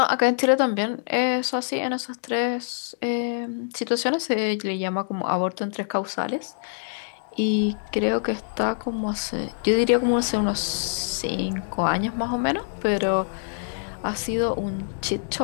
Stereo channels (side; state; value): right; silent; digital silence